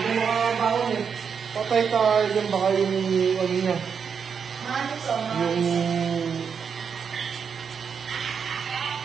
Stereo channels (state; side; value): quieter; left; 6.6 dB